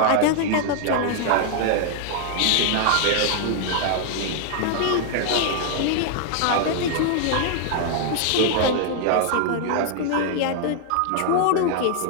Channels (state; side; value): different; both; correlation 0.00